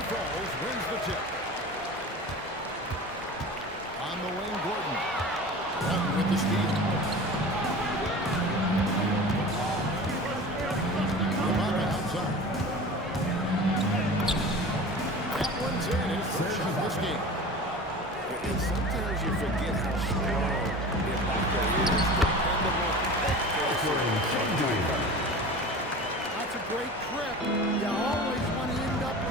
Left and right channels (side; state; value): both; normal; correlation 0.36